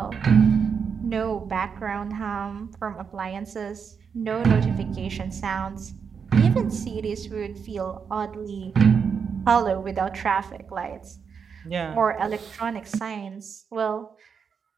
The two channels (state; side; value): quieter; left; 6.4 dB